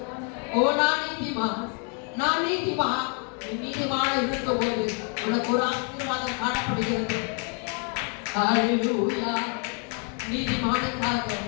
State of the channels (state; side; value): quieter; right; 39.9 dB